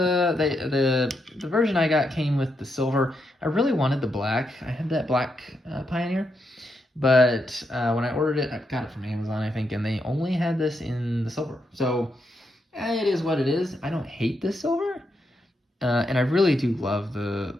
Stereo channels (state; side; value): normal; both; correlation 0.82